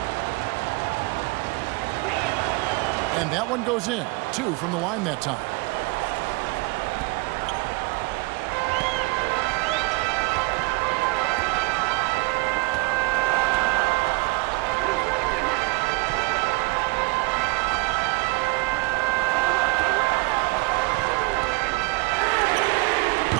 And that one goes in. 2 from the line that time.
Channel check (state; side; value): quieter; left; 25.4 dB